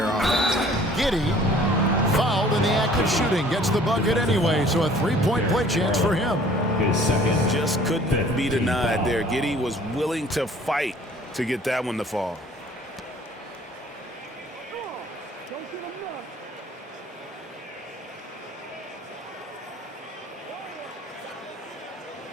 offense. Giddy, fouled in the act of shooting, gets the bucket anyway, so a 3-point play chance for him. His second. Just couldn't be denied there. Giddy was willing to fight to get that one to fall.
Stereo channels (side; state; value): both; normal; correlation 0.53